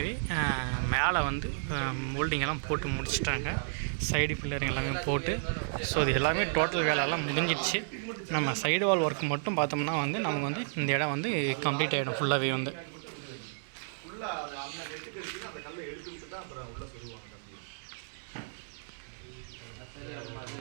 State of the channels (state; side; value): silent; left; 56 dB below the other